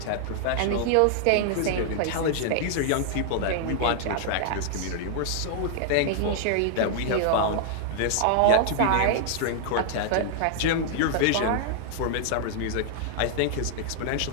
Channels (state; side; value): different; both; correlation -0.01